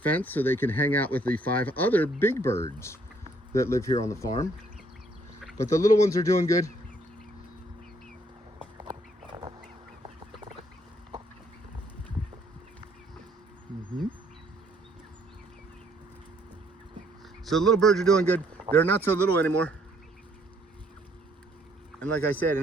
so they can hang out with the 5 other big birds that live here on the farm. But the little ones are doing good. So the little birds are doing good. They're not so little anymore. And like I said,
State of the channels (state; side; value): normal; both; correlation 0.66